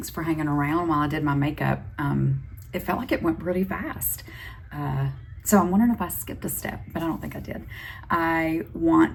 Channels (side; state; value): both; identical; correlation 1.00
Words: for hanging around while I did my makeup. It felt like it went pretty fast. So I'm wondering if I skipped a step, but I don't think I did.